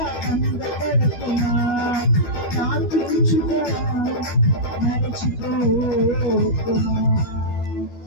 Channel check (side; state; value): right; late; 12 ms